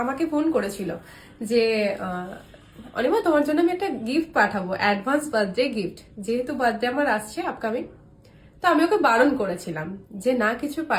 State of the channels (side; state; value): both; identical; correlation 1.00